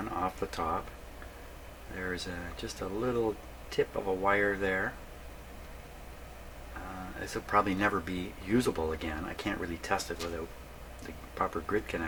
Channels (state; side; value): identical; both; correlation 1.00